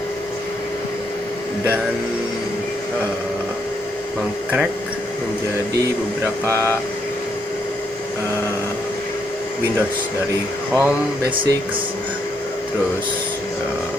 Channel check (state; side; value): normal; both; correlation 0.75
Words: dan mengcrack menjadi beberapa Windows, dari Home, Basics, terus